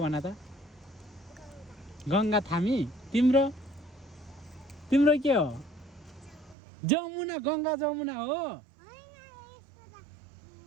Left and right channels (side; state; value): left; drops out; at 6.6 s